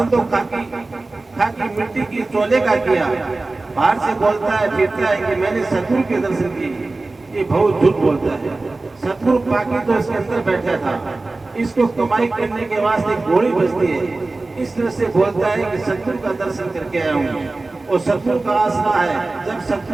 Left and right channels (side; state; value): left; quieter; 3.3 dB